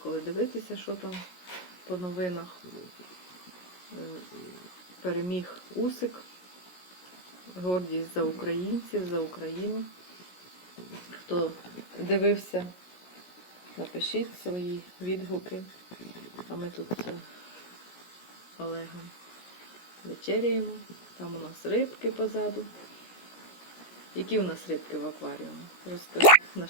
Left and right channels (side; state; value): right; late; 17 ms